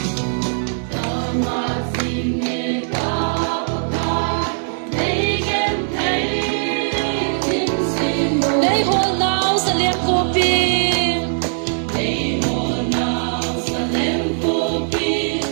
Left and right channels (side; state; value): left; silent; digital silence